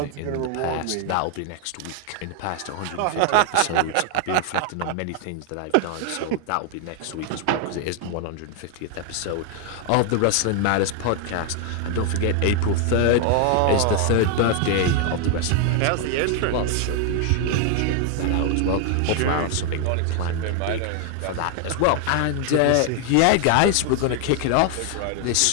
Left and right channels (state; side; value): different; both; correlation 0.00